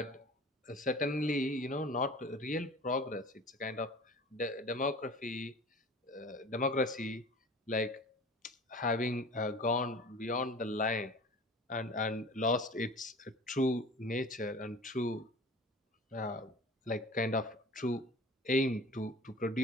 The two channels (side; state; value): both; normal; correlation 0.41